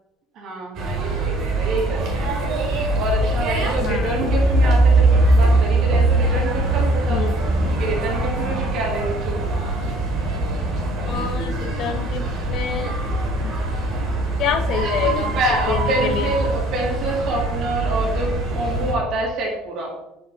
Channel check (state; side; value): normal; both; correlation 0.58